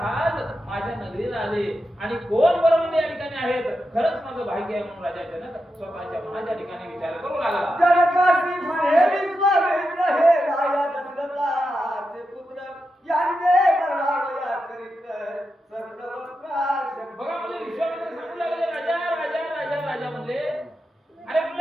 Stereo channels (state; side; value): normal; both; correlation 0.88